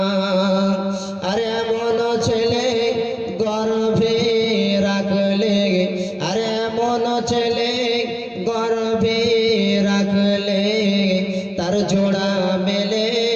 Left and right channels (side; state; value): both; identical; correlation 1.00